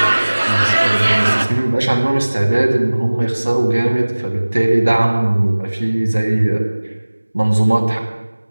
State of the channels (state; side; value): inverted; both; correlation -1.00